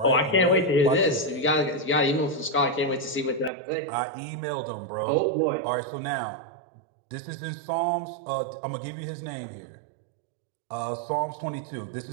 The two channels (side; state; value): left; drops out; at 3.5 s